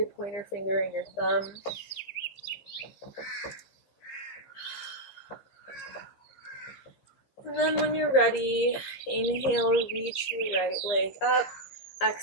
pointer finger and your thumb. And then when you're ready, inhale, reach your right leg up.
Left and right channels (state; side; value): late; right; 15 ms